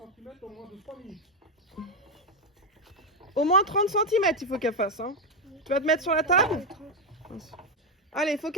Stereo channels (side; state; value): both; normal; correlation 0.06